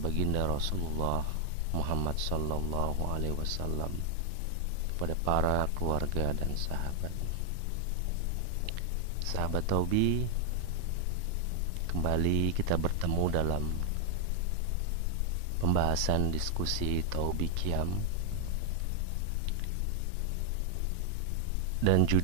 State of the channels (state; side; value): different; both; correlation 0.00